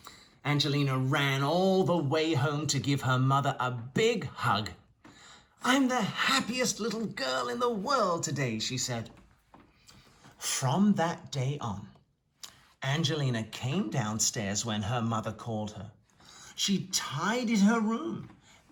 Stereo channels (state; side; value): identical; both; correlation 1.00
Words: Angelina ran all the way home to give her mother a big hug. "I'm the happiest little girl in the world today," she said. From that day on, Angelina came downstairs when her mother called her. She tidied her room,